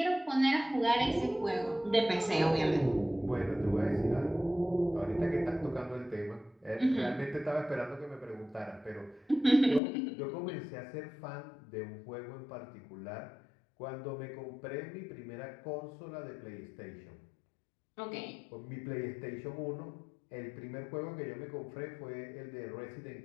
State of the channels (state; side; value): drops out; right; at 9.8 s